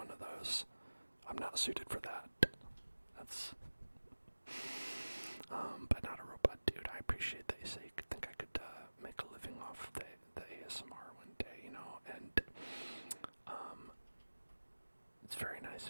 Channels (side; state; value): both; inverted; correlation -1.00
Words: of those, I'm not suited for that. That's but not a robot, dude. I appreciate that you say you think I could make a living off the ASMR one day, you know, and it's very nice